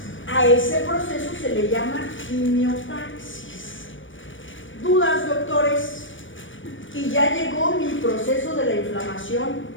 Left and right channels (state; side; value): late; right; 0.56 ms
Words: A ese proceso se le llama quimiotaxis. ¿Dudas, doctores? Y ya llegó mi proceso de la inflamación